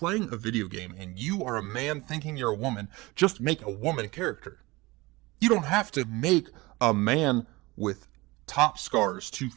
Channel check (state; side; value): quieter; left; 22.2 dB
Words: a video game and you are a man thinking you're a woman, just make a woman character. You don't have to make a man with top scars to